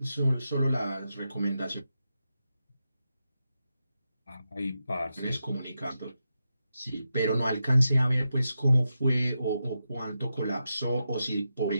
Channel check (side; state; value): both; inverted; correlation -0.88